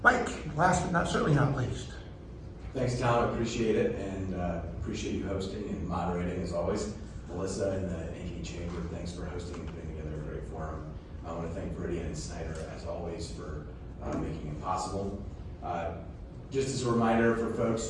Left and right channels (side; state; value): both; identical; correlation 1.00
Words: Mike, last but certainly not least. Thanks, Tom. I appreciate it, and appreciate you hosting and moderating as always. Melissa and the Ankeny Chamber, thanks for hosting and putting together a great forum. I want to thank Viridian and Snyder as always for making it possible. Just as a reminder for folks